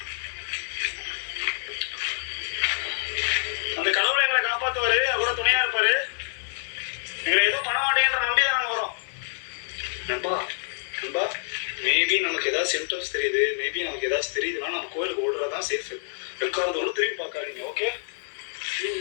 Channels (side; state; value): right; silent; 60 dB below the other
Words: தெரியுது. மேபி நமக்கு ஏதாச்சும் தெரியுதுன்னா நம்ம கோயிலுக்கு ஓடுறதான் சேஃப். வெக்காரதோட திரும்பி பார்க்காதீங்க. ஓகே?